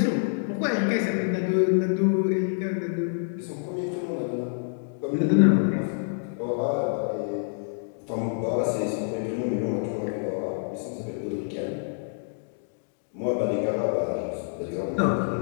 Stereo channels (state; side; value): silent; right; digital silence